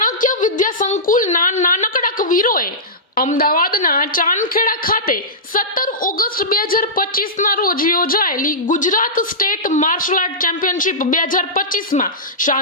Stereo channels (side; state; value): both; normal; correlation -0.16